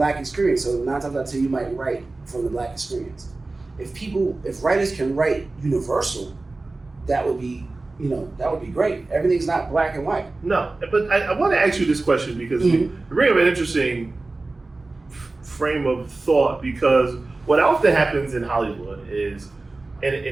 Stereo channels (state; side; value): quieter; left; 3.3 dB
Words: experience, so 9 times out of 10 you might write from the Black experience. If writers can write universal, that would be great. Everything's not black and white. No, but I want to ask you this question because you bring up an interesting frame of thought, because what often happens in Hollywood is,